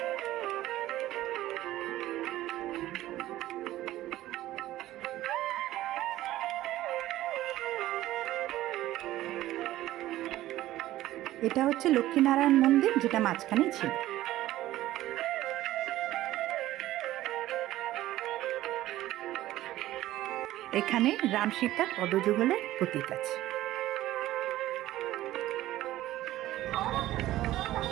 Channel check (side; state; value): left; quieter; 15.0 dB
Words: এটা হচ্ছে লক্ষ্মীনারায়ণ মন্দির, যেটা মাঝখানে ছিল। এখানে রাম সীতার পদযুগলের প্রতীক আছে।